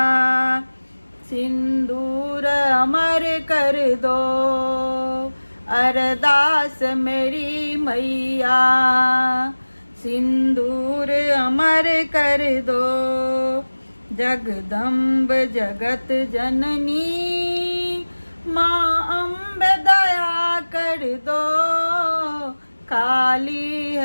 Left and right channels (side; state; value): both; inverted; correlation -1.00